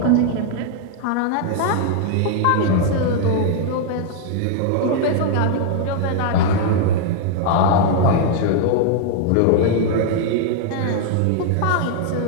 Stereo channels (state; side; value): different; both; correlation 0.00